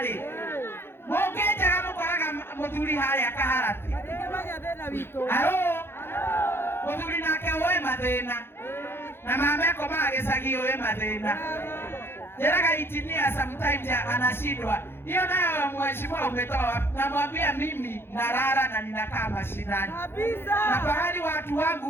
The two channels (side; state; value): right; late; 0.11 ms